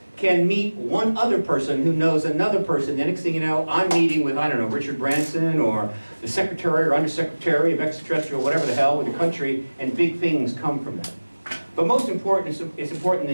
can meet one other person who knows another person. The next thing you know, I'm meeting with, I don't know, Richard Branson or the Secretary or Undersecretary of Extraterrestrial, whatever the hell, with the country, and big things come from that. But most important, it's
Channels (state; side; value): inverted; both; correlation -1.00